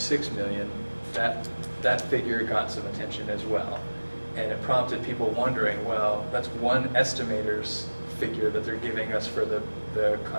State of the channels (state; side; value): inverted; both; correlation -1.00